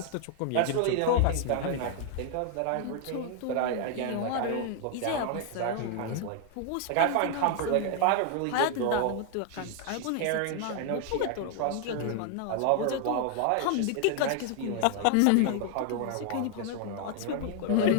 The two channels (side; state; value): both; different; correlation 0.00